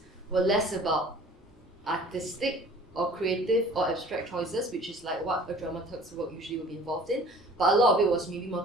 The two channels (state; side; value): normal; both; correlation 0.48